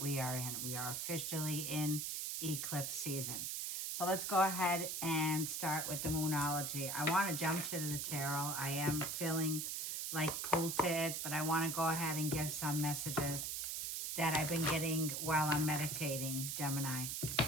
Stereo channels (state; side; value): noise; right; hiss, 2 dB below the sound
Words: we are in. We are officially in eclipse season. So let's go ahead and start with the Moonology. I want to jump to the tarot. I am feeling like pulled to it, but I want to go ahead and give some messages that I've been getting while I'm meditating, Gemini.